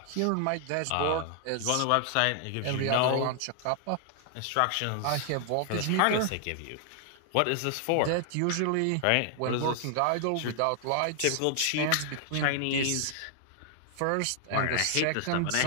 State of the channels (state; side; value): different; both; correlation 0.00